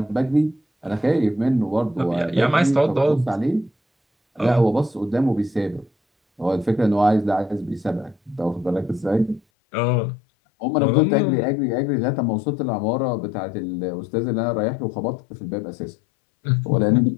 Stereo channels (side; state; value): right; drops out; at 9.4 s